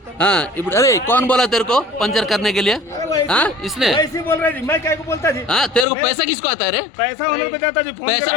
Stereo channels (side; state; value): right; drops out; at 5.9 s